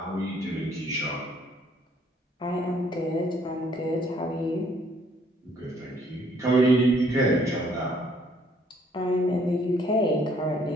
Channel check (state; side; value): normal; both; correlation 0.64